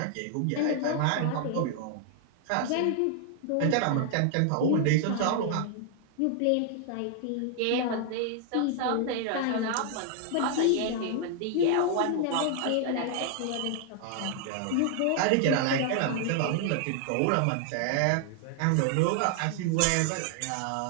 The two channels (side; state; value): both; different; correlation 0.00